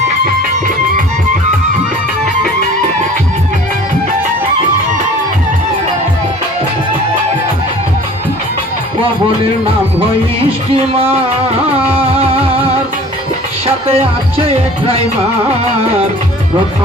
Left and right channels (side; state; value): both; normal; correlation 0.47